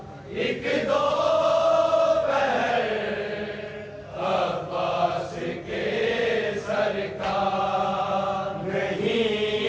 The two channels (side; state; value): both; identical; correlation 1.00